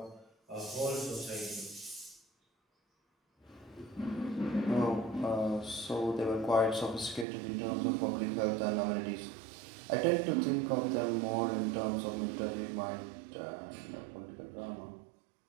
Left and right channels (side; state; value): left; drops out; at 7.2 s